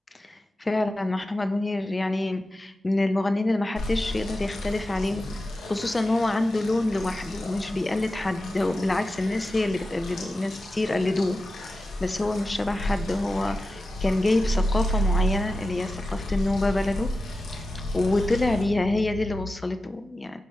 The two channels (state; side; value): normal; both; correlation 0.93